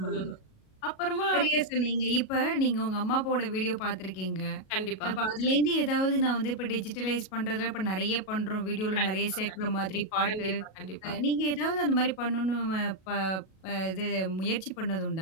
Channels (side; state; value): right; late; 37 ms